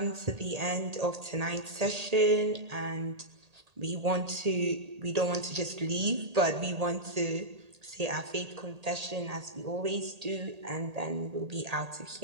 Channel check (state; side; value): late; left; 1.8 ms